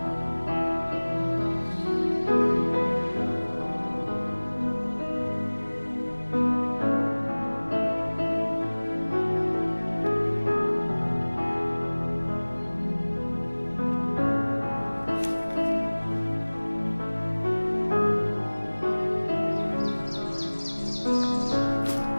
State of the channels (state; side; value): inverted; both; correlation -1.00